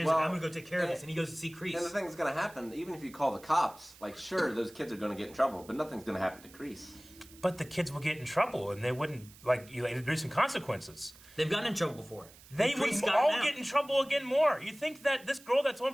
like, I'm going to go take care of this. And he goes to see Kreese. And the thing that's going to happen, even if you call the cops, like, sure, those kids are going to get in trouble, but nothing's going to happen to Kreese. But the kids will get in trouble, and they wouldn't, like, there's some consequences. They've gotten in trouble before. They And would Kreese got all out. get in trouble again more. You think that this girl that's on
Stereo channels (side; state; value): right; noise; hiss, 22 dB below the sound